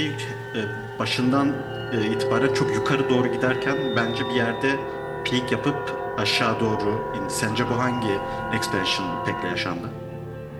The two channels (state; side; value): identical; both; correlation 1.00